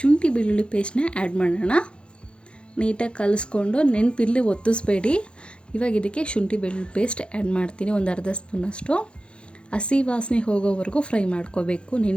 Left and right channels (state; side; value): late; right; 0.056 ms